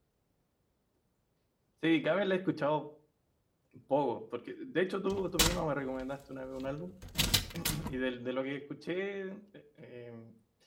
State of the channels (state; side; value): identical; both; correlation 1.00